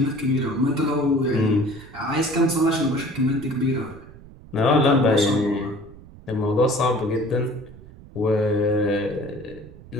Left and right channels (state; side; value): noise; right; rumble, 20 dB below the sound